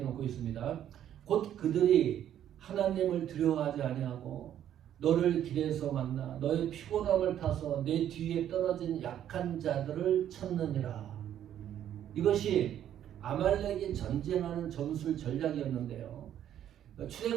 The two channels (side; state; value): left; quieter; 10.7 dB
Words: 놓고 있습니다. 곧 그들이 하나님을 두려워하지 아니하고 너를 길에서 만나 너의 피곤함을 타서 내 뒤에 떨어진 약한 자들을 찾느니라. 이것이 아말렉이 전쟁하는 전술 전략이었는데요.